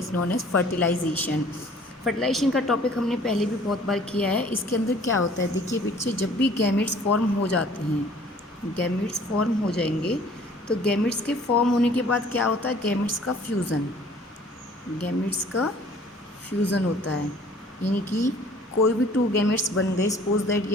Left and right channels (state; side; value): normal; both; correlation 0.53